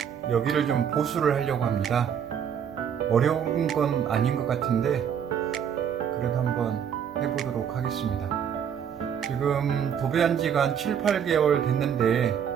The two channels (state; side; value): quieter; left; 8.2 dB